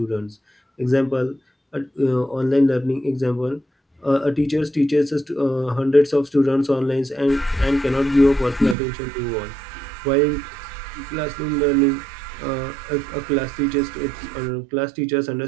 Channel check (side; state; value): left; drops out; at 8.8 s